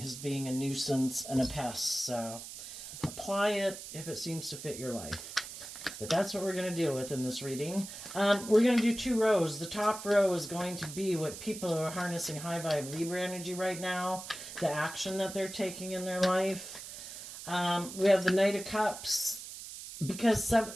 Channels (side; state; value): right; noise; hiss, 11 dB below the sound